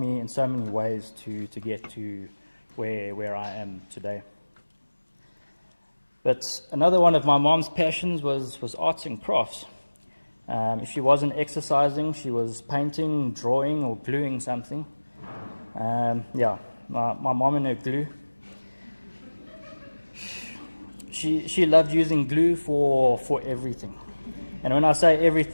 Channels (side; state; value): both; inverted; correlation -1.00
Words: in so many ways to get to where I am today. But another one of my mom's passions was arts and crafts. If she wasn't exercising, she was painting, drawing, or gluing something. My mom and her glue. She loved using glue for everything. And when I say